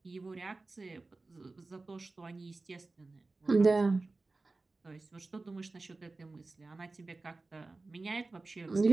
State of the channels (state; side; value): quieter; left; 3.5 dB